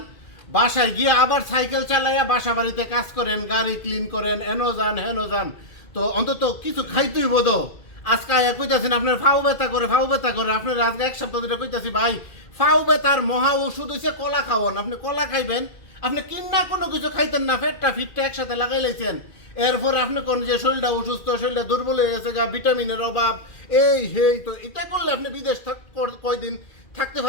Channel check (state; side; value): late; right; 2.4 ms